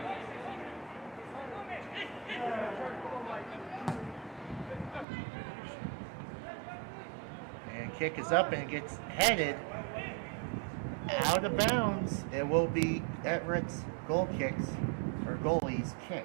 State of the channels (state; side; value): drops out; left; at 5.1 s